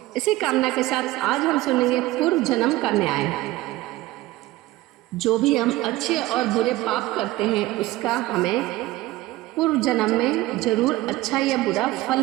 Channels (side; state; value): left; quieter; 17.7 dB